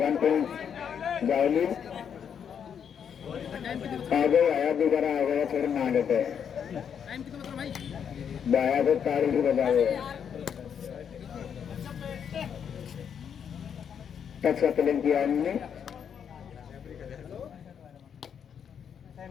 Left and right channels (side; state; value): right; quieter; 7.8 dB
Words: पॉइंट जावली आगे आया दोबारा आ गया थोड़ा ना लेते बाया तो तारीख बजाओ टच का प्लेन किया हमने